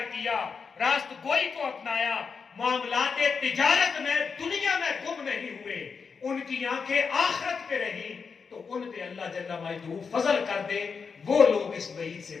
کیا, راست گوئی کو اپنایا, معاملات تجارت میں دنیا میں گم نہیں ہوئے, ان کی آنکھیں آخرت پہ رہی, تو ان پہ اللہ جل مجدہ فضل کر دے، وہ لوگ اس وعید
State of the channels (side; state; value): right; quieter; 5.5 dB